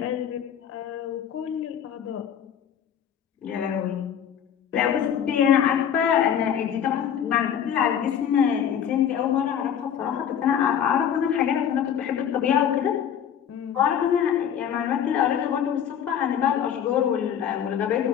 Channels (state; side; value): quieter; right; 8.9 dB